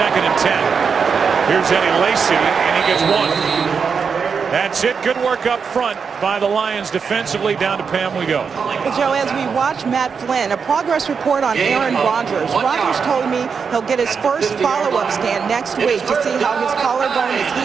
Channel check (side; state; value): left; quieter; 5.9 dB